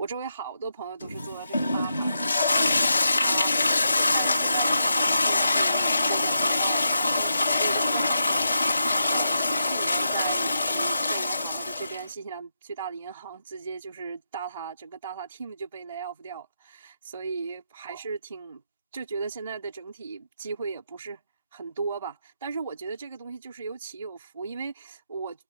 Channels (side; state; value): both; inverted; correlation -0.85